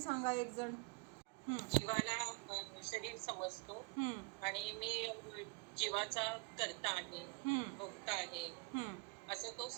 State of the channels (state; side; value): quieter; left; 28.5 dB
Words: सांगा एक जण. जीवाला शरीर समजतो आणि मी जीवाचा कर्ता आहे, भोक्ता आहे असं तो